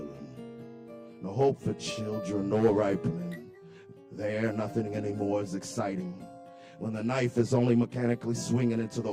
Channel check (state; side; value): identical; both; correlation 1.00